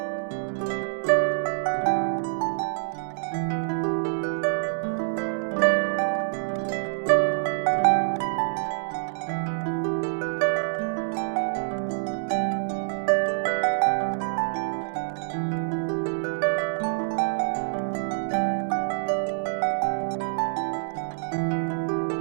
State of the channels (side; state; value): left; silent; 61 dB below the other